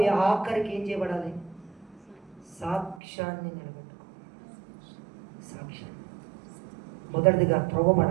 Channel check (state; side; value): drops out; left; at 3.0 s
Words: ఆఖరికి ఏం చేయబడాలి? సాక్ష్యాన్ని నిలబెట్టుకోవాలి. సాక్ష్యాన్ని మొదటిదిగా